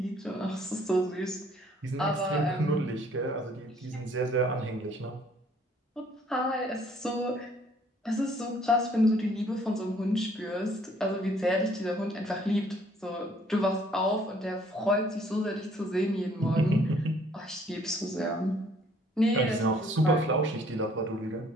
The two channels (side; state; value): both; normal; correlation 0.61